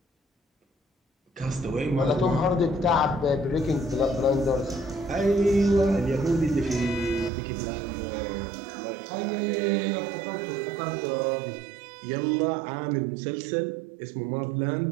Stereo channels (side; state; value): left; drops out; at 7.3 s